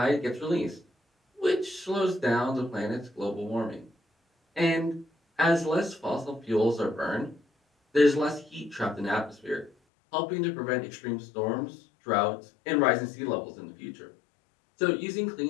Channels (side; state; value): right; drops out; at 9.7 s